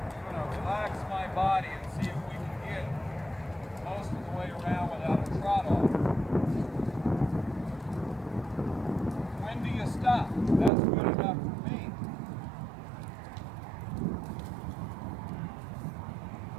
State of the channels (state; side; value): drops out; left; at 10.7 s